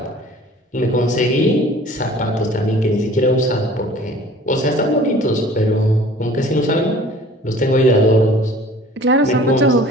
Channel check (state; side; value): normal; both; correlation 0.48